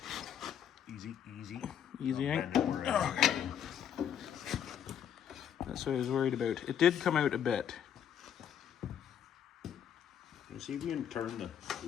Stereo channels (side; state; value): right; quieter; 9.0 dB